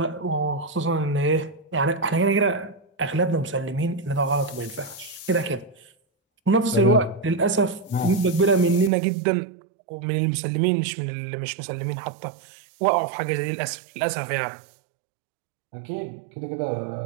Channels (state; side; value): drops out; left; at 8.9 s